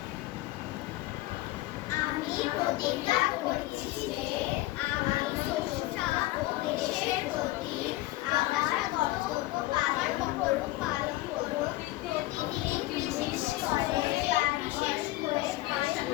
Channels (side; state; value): right; quieter; 18.4 dB